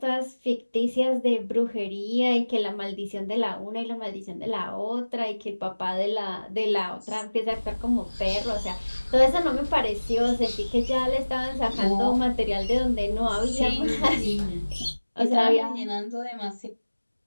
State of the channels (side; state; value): both; inverted; correlation -1.00